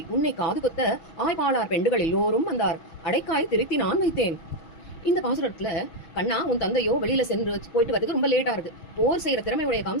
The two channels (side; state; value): right; late; 6.2 ms